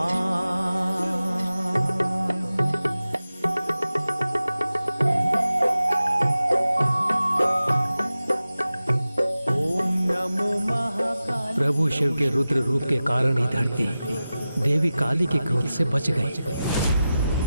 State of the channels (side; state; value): both; inverted; correlation -0.94